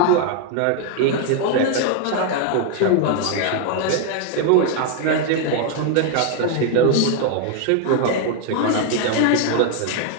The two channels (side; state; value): both; different; correlation 0.01